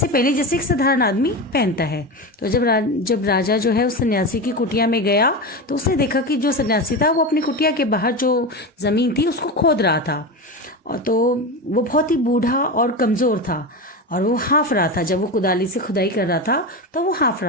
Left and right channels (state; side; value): normal; both; correlation 0.21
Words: पहले जैसे एक साधारण आदमी पहनता है। तो जब राजा जो है उस सन्यासी की कुटिया में गया तो उसने देखा कि जो सन्यासी था वो अपनी कुटिया के बाहर जो ज़मीन थी उसको खोद रहा था। और तो वो बहुत ही बूढ़ा और कमज़ोर था और वो हाँफ रहा था। जब वो कुदाली से खुदाई कर रहा था तो वो हाँफ